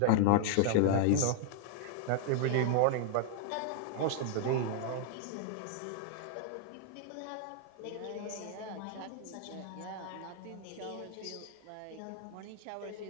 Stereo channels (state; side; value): different; both; correlation 0.00